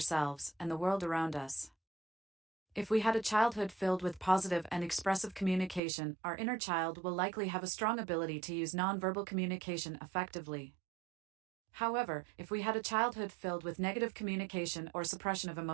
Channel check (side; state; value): left; drops out; at 5.8 s